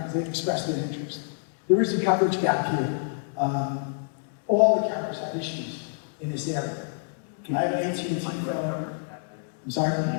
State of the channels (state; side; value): silent; right; 60 dB below the other